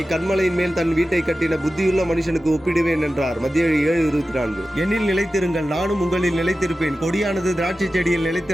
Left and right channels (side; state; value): both; normal; correlation 0.94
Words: கன்மலையின் மேல் தன் வீட்டை கட்டின புத்தியுள்ள மனுஷனுக்கு ஒப்பிடுவேன் என்றார். மத்திய 7:24. என்னில் நிலைத்திருங்கள், நானும் உங்களில் நிலைத்திருப்பேன். கொடியானது திராட்சை செடியில்